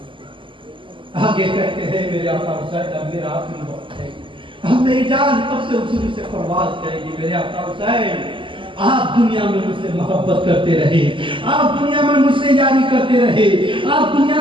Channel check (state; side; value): late; left; 0.25 ms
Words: آگے کہتے ہیں میرے آقا حسین اب میرا آخری وقت ہے، اب میری جان کب سے حضور سے پرواز کرے گی۔ میرے آقا حسین آپ دنیا میں مجھ سے محبت کرتے رہے، آپ دنیا میں مجھ سے یاری کرتے رہے، آپ